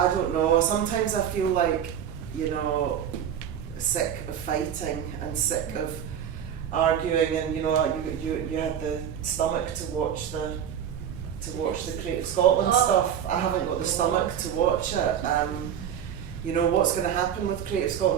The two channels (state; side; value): quieter; left; 9.2 dB